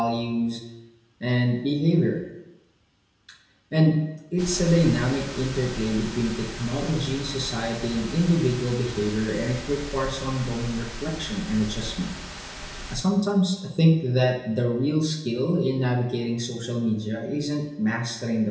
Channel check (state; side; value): identical; both; correlation 1.00